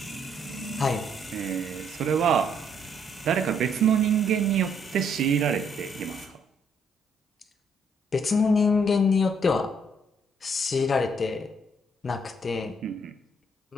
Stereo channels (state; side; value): normal; both; correlation 0.69